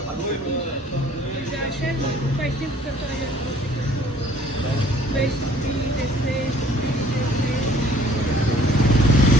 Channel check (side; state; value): both; normal; correlation 0.57